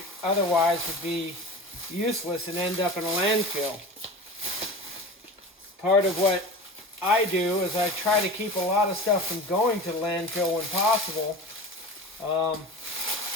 otherwise would be useless and end up in a landfill. Part of what I do is I try to keep a lot of stuff from going to the landfill when possible. I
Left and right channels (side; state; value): both; normal; correlation 0.33